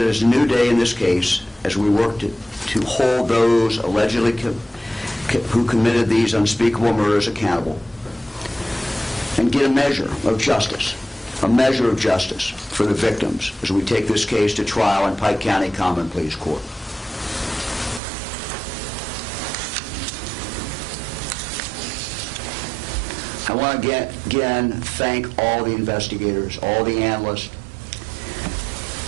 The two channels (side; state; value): left; drops out; at 18.0 s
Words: is a new day in this case, as we work to hold those allegedly who committed these unspeakable murders accountable and get a measure of justice for the victims as we take this case to trial in Pike County Common Pleas Court. I want to again thank all the investigators, all the analysts,